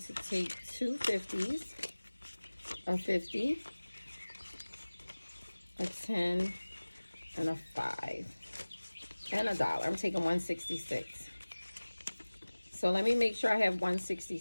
take two 50s. A 50, a 10, and a 5, and a dollar. I'm taking 166. So let me make sure I have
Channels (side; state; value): both; inverted; correlation -1.00